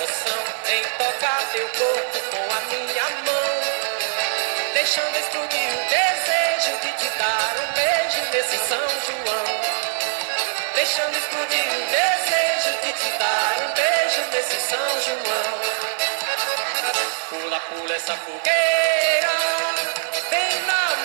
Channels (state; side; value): silent; left; digital silence